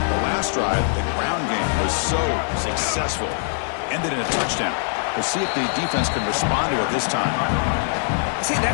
last drive, the ground game was so successful. Ended in a touchdown. We'll see if the defense can respond to it this time. See,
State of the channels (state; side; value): silent; right; 58 dB below the other